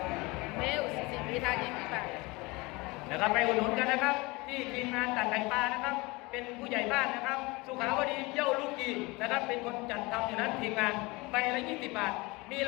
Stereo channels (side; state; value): right; quieter; 24.2 dB